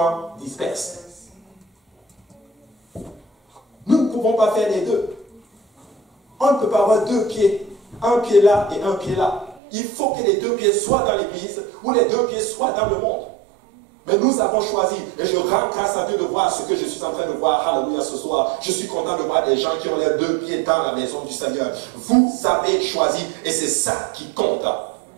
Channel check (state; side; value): drops out; left; at 9.6 s